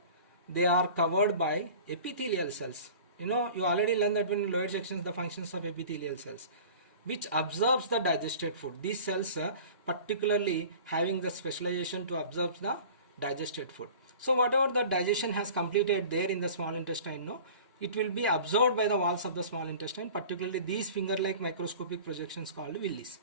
they are covered by epithelial cells. You already learned that when in lower sections the functions of epithelial cells, which absorbs the digested food. These cells particularly having the specialization to absorb the digested food. So whatever the digestion has completed there in the small intestine, it will be absorbed by the walls of the small intestine, particularly these finger-like microscopic projections called villis.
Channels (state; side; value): inverted; both; correlation -0.42